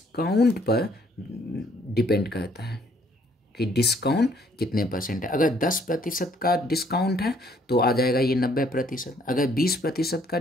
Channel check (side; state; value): both; normal; correlation 0.64